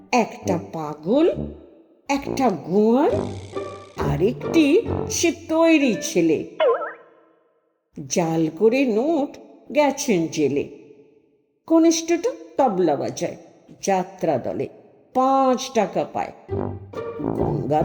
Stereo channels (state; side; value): identical; both; correlation 1.00